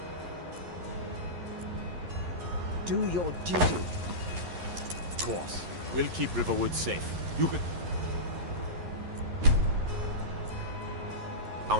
do your duty. Of course. We'll keep Riverwood safe. You can...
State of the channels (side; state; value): left; late; 11 ms